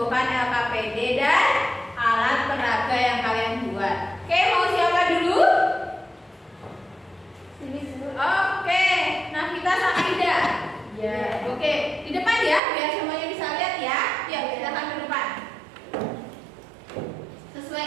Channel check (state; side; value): drops out; left; at 12.6 s